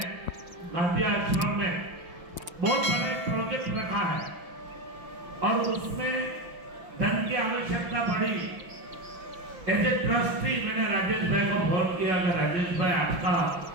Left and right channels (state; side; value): late; left; 5.9 ms